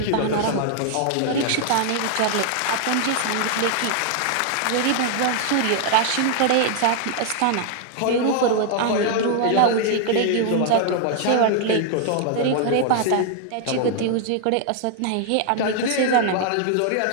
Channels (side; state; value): both; different; correlation 0.00